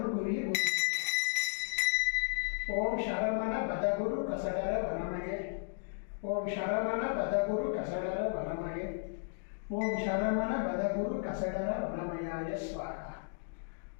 புரிய ஓம் சரமண பதகுரு கசடர வனமயே, ஓம் சரமண பதகுரு கசடர வனமயே, ஓம் சரமண பதகுரு கசடர வனமயாய ஸ்வாகா.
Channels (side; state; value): right; silent; digital silence